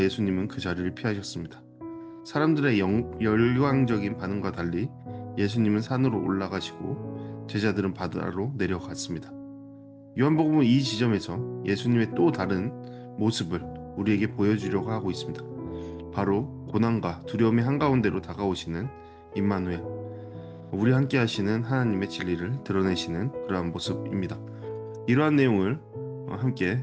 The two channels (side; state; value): both; identical; correlation 1.00